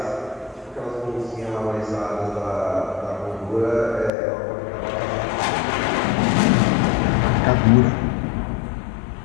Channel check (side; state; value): right; drops out; at 4.1 s